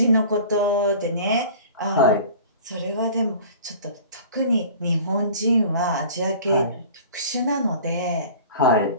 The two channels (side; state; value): both; inverted; correlation -0.43